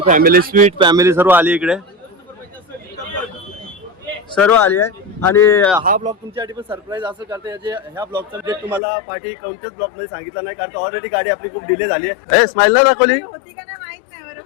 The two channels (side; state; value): right; drops out; at 8.8 s